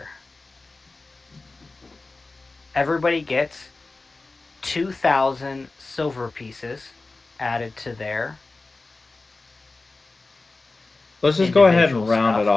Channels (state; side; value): quieter; right; 3.5 dB